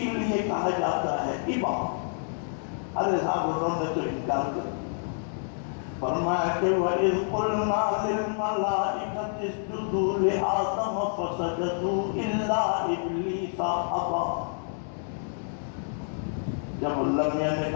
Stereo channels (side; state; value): right; silent; 59 dB below the other